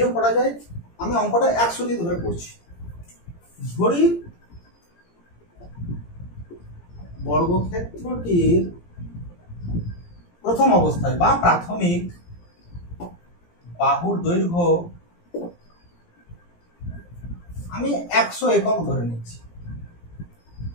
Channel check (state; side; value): late; right; 17 ms